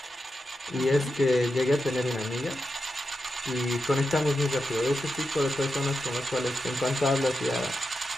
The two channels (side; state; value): both; normal; correlation 0.89